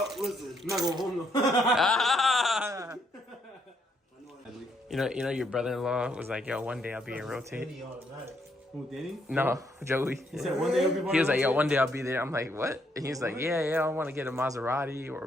listening. I'm not going home though. Ah! You know, your brother-in-law was like, yo, one day I'll be in Rotate. Who, Danny? No, Joey. He said one day he'll be He was like, yo, one day I'll be there. I'm like, what? And he's like, yeah, I want to get a Maserati or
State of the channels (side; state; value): both; normal; correlation 0.73